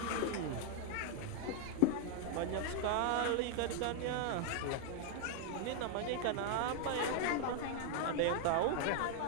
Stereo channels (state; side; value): different; both; correlation 0.00